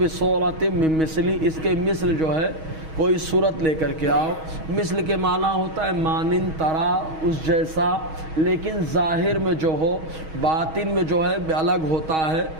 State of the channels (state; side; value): late; left; 6.3 ms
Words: مِّن مِّثْلِهِ، اس کے مثل جو ہے کوئی صورت لے کر کے آؤ۔ مثل کے معنی ہوتا ہے مانند، طرح، اس جیسا، لیکن ظاہر میں جو ہو باطن میں جو ہے الگ ہوتا ہے،